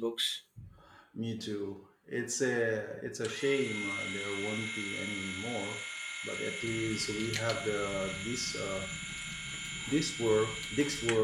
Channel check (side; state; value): both; identical; correlation 1.00